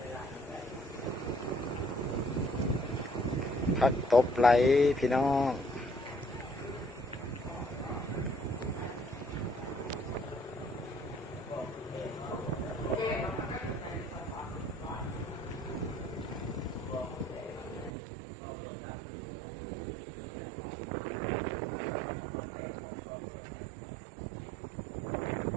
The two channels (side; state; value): left; drops out; at 17.9 s